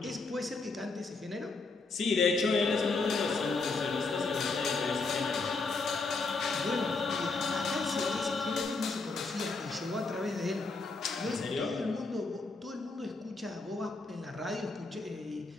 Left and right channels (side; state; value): right; quieter; 3.8 dB